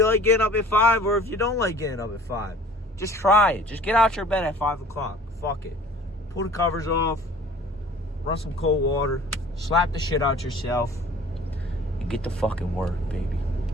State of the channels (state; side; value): normal; both; correlation 0.47